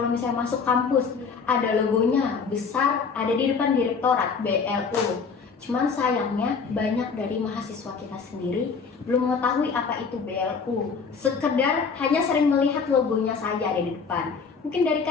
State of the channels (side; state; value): right; quieter; 5.4 dB